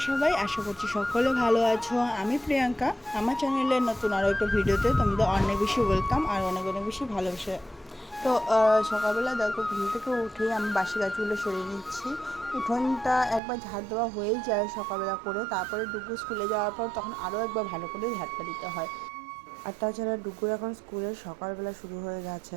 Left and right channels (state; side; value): drops out; left; at 13.4 s